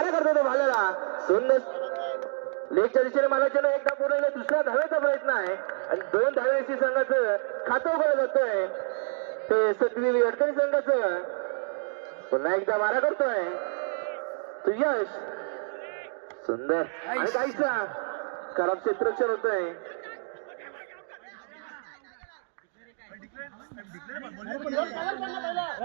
करतो तो भाल्याला. सुंदर लेगच्या दिशेने मारायचे एकदा पूर्ण दुसऱ्या धावेचा प्रयत्न आहे आणि 2 धावेची संघाचं खातं उघडलं जातोय. ते सतवी अडकणी संघाचं पुन्हा एकदा मारा करतोय तो यश. सुंदर आणि काहीसा खराब क्षेत्ररक्षण होतोय.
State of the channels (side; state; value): left; silent; digital silence